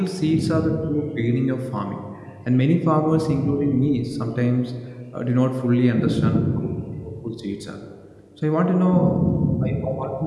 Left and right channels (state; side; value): identical; both; correlation 1.00